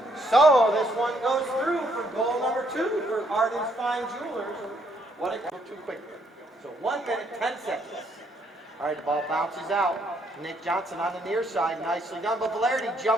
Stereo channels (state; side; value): normal; both; correlation 0.70